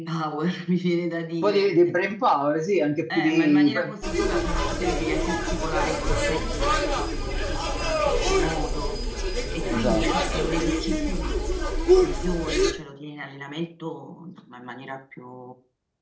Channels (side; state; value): both; identical; correlation 1.00